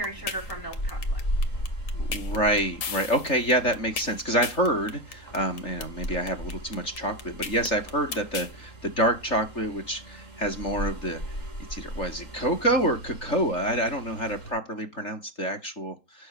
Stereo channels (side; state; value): right; late; 3.8 ms